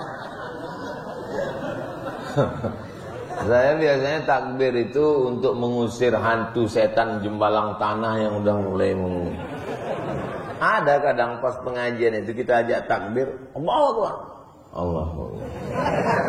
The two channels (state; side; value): identical; both; correlation 1.00